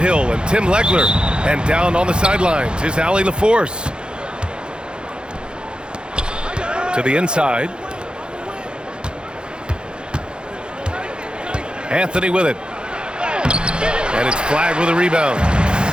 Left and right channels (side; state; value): left; late; 0.050 ms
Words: and Tim Legler. And down on the sidelines is Allie LaForce. To the inside. Anthony with it. And it's Flagg with a rebound.